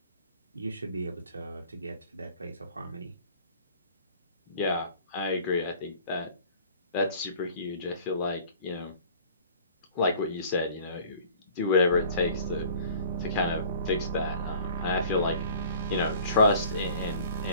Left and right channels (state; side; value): inverted; both; correlation -0.48